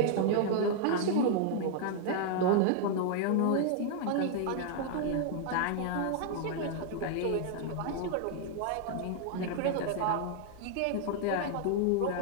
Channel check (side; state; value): both; different; correlation 0.00